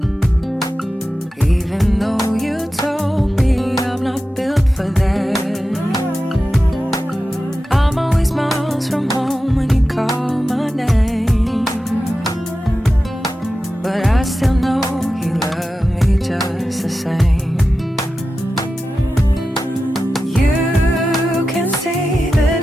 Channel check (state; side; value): normal; both; correlation 0.92